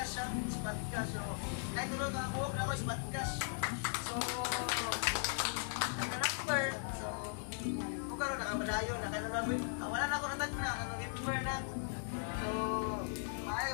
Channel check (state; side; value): silent; right; digital silence